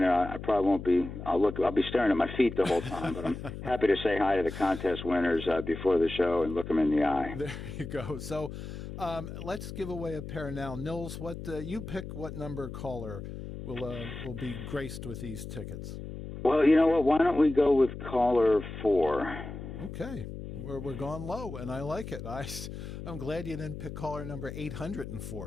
I probably won't be. I'll be staring at my feet the whole time. But I'm happy to say hi to the contest winners before the show and look them in the eye. There you go. So let's give away a pair now. Nils, you pick what number caller will be graced with these tickets. Well, you know what? Why don't we go with caller 4? Okay. We're going low, and I like it. I'm glad you didn't pick caller number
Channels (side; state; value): left; noise; hum, 9 dB below the sound